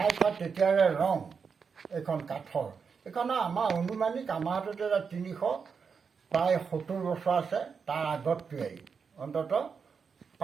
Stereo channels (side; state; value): left; quieter; 5.9 dB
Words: তেতিয়াৰে ৰং। এইখন কাঠৰ। এইখন আমাৰ অনুমানিক আমাৰ হাতত এটা 300 প্ৰায় 70 বছৰ আছে, তাৰ আগত তৈয়াৰী। অন্ততঃ